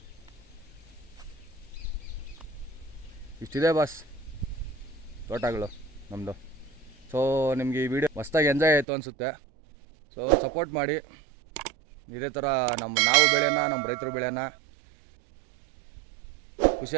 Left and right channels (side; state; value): left; drops out; at 8.8 s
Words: ಇಷ್ಟಿದೆ ಬಾಸ್ ತೋಟಗಳು ನಮ್ಮದು. ಸೊ ನಿಮಗೆ ಈ ವಿಡಿಯೋ ಮಸ್ತಾಗಿ ಎಂಜಾಯ್ ಆಯಿತು ಅನಿಸುತ್ತೆ. ಸೊ ಸಪೋರ್ಟ್ ಮಾಡಿ. ಇದೇ ಥರ ನಾವು ಬೆಳೆಯೋಣ, ನಮ್ಮ ರೈತರು ಬೆಳೆಯೋಣ,